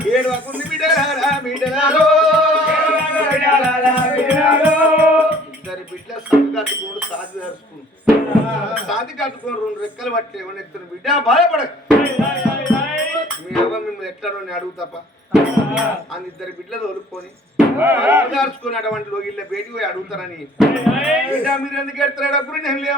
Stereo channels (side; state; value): both; normal; correlation 0.54